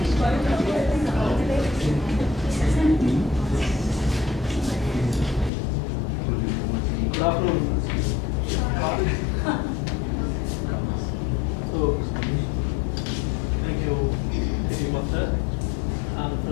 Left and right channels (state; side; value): drops out; right; at 5.5 s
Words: Good afternoon. So, thank you, City Master, and